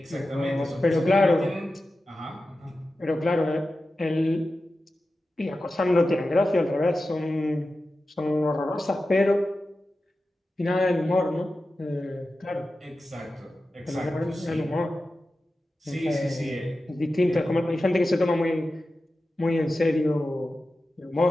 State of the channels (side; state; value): both; normal; correlation 0.93